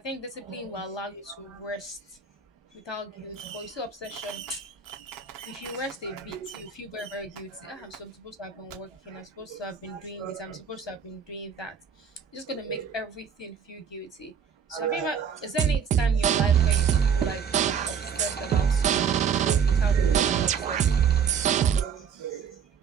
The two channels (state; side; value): quieter; left; 7.0 dB